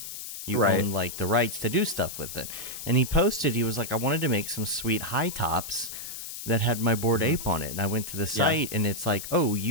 like the rights to do stuff with it. And he was like, I wanted to make some sweet high tops that had my Bored Ape on it, and I went to the site, and it's like,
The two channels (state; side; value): noise; left; hiss, 9 dB below the sound